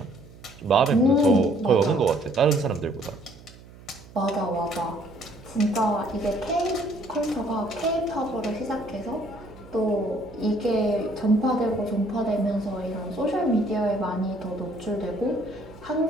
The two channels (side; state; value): right; noise; hum, 21 dB below the sound